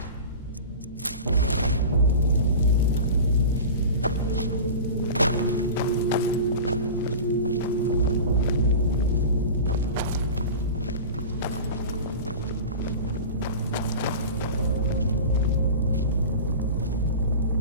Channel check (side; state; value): both; inverted; correlation -0.32